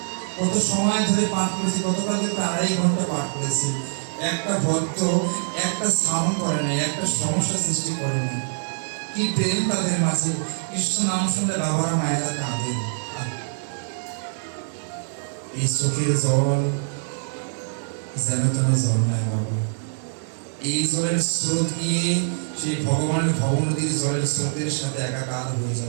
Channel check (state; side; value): silent; left; 62 dB below the other